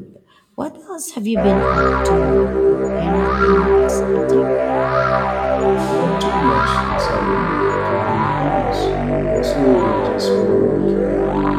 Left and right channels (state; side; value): identical; both; correlation 1.00